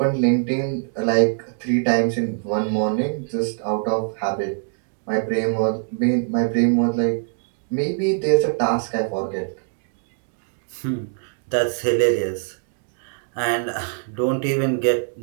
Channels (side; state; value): left; silent; digital silence